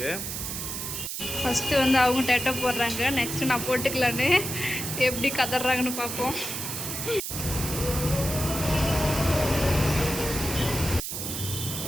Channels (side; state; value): right; noise; hiss, 5 dB below the sound